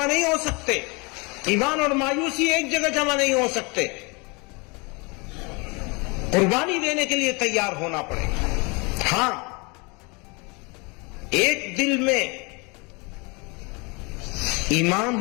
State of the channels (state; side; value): quieter; right; 29.2 dB